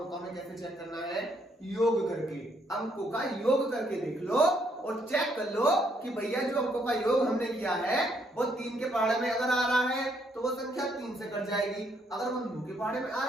का में कैसे चेक करना है? योग करके, अंकों का योग करके देख लो और चेक कर लो कि भैया जो अंकों का योग हमने किया है वो 3 के पहाड़े में अगर आ रहा है तो वो संख्या 3 से कट जाएगी, अगर वो 9 के पहाड़े में आ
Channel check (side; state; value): both; normal; correlation 0.71